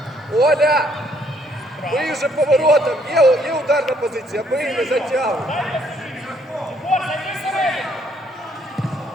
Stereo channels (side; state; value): both; normal; correlation 0.67